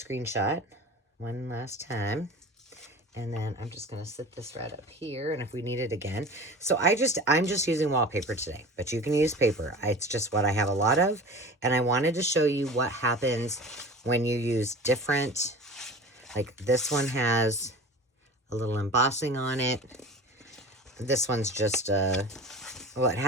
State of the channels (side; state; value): both; normal; correlation 0.36